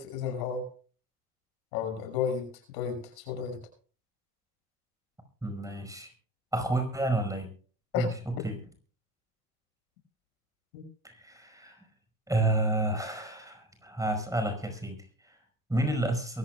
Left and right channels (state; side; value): normal; both; correlation 0.38